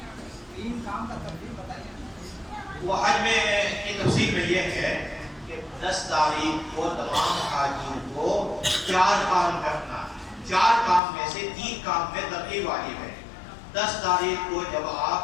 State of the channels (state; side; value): drops out; right; at 11.0 s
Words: وہ حج میں کی تفصیل میں یہ ہے کہ 10 تاریخ کو تمام حاجیوں کو 4 کام کرنا ہے، 4 کام میں سے 3 کام میں ترتیب واجب ہے۔ 10 تاریخ کو جب